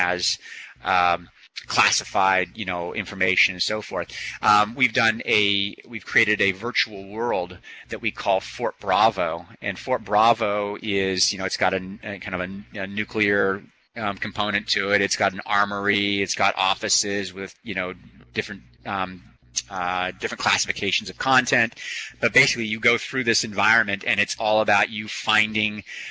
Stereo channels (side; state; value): both; identical; correlation 1.00